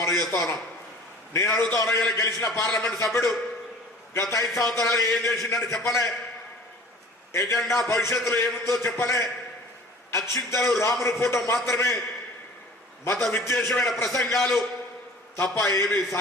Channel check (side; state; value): both; normal; correlation 0.45